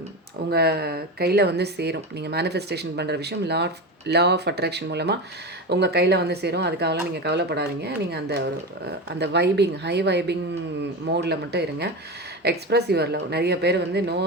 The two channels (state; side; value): normal; both; correlation 0.22